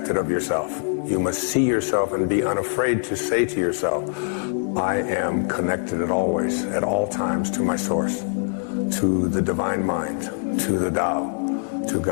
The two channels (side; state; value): right; silent; 61 dB below the other